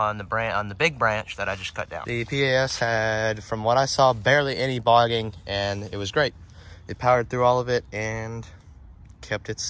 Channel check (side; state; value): both; identical; correlation 1.00